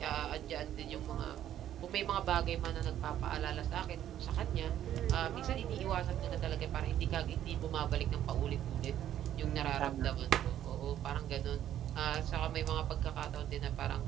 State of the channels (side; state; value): left; quieter; 11.3 dB